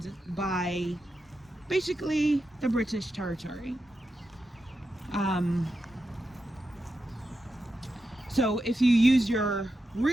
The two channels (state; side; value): normal; both; correlation 0.88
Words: by basically the British territory. So if you use your